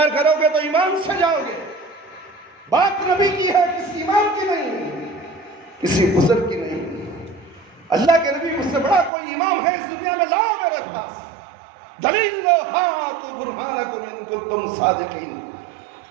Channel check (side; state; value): left; drops out; at 9.1 s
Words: کرو گے تو ایمان سے جاؤ گے۔ بات نبی کی ہے، کسی امام کی نہیں، کسی بزرگ کی نہیں۔ اللہ کے نبی مجھ سے بڑا کوئی امام ہے اس دنیا میں، لاؤ میرے پاس دلیل لو، ہاتو برہانکم ان کنتم صادقین،